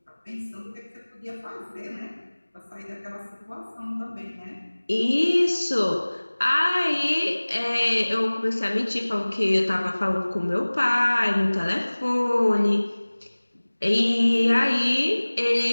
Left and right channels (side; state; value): both; inverted; correlation -1.00